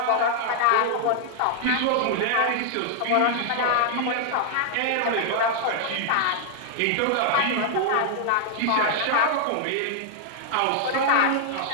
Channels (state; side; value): different; both; correlation 0.00